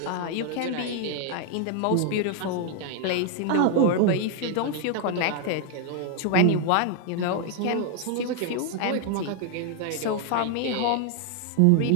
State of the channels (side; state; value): both; different; correlation 0.00